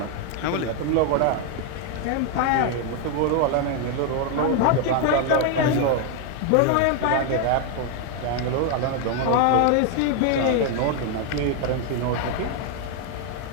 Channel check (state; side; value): different; both; correlation 0.01